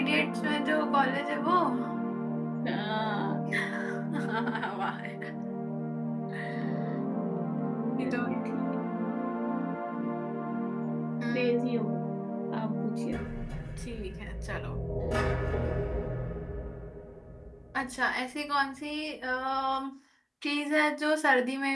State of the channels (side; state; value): both; identical; correlation 1.00